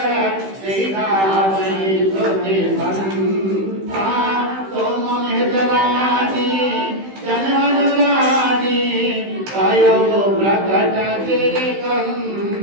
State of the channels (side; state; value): left; late; 15 ms